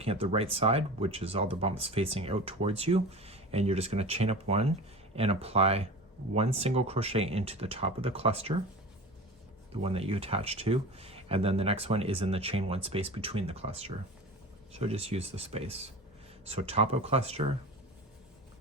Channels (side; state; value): both; normal; correlation 0.34